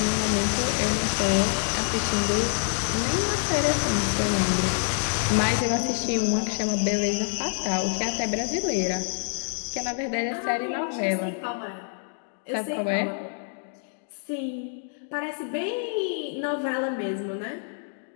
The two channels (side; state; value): right; silent; digital silence